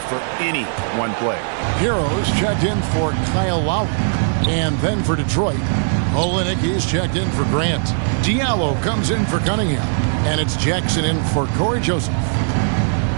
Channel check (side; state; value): left; silent; digital silence